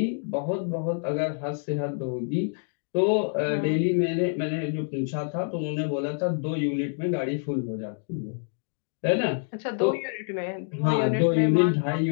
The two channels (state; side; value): silent; right; digital silence